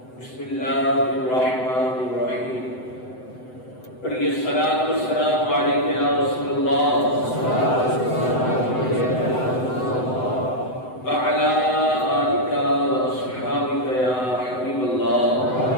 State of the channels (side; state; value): right; late; 7.9 ms